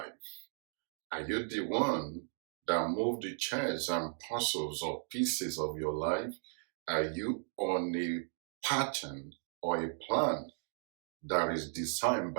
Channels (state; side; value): silent; left; 54 dB below the other